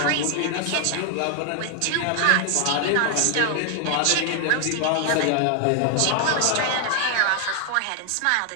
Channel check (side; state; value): both; different; correlation 0.00